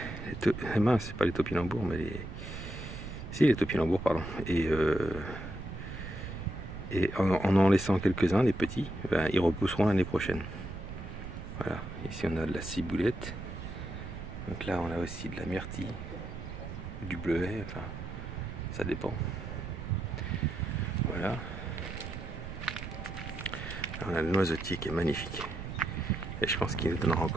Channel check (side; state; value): right; noise; rumble, 9 dB below the sound